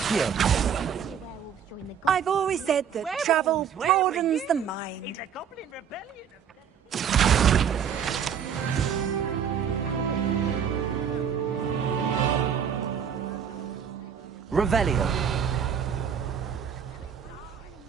I've always said that travel broadens the mind. It's a goblin rebellion. Revelio.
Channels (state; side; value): quieter; left; 7.8 dB